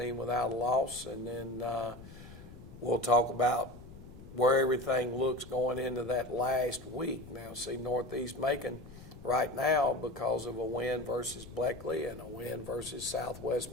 without a loss. And then we'll talk about where everything looks going into that last week. Now, see, Northeast Macon right now, because of a win versus Bleckley and a win versus Southwest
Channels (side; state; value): left; noise; rumble, 16 dB below the sound